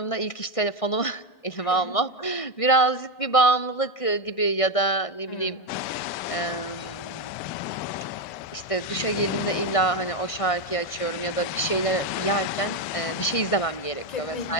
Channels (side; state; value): right; late; 1.6 ms